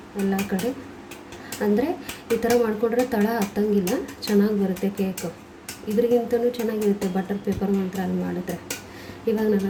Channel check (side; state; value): both; identical; correlation 1.00